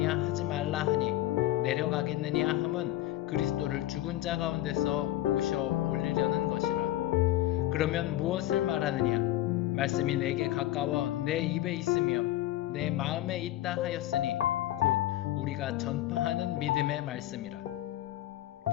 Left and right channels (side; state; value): right; quieter; 14.7 dB